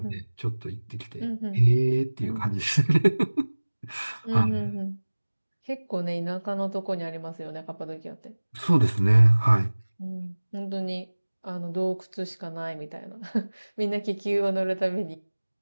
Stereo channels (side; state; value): both; inverted; correlation -1.00